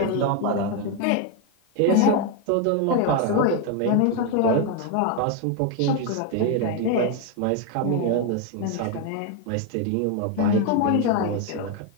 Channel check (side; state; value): both; different; correlation 0.01